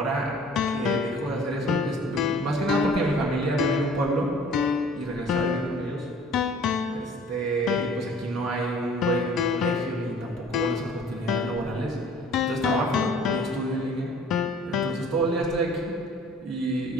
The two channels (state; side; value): normal; both; correlation 0.51